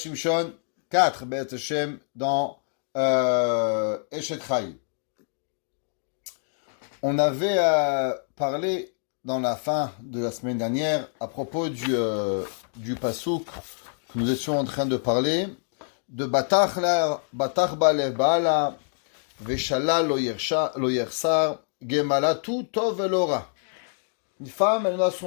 4 Beth Hashem dans Eshet Chai. On avait parlé dans la fin de la semaine dernière à propos du pasouk que nous étions en train de parler de Batach Balev Baala Veshala lo yersar Gemala tout tov elora. Une femme, elle n'a à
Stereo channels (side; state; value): right; silent; digital silence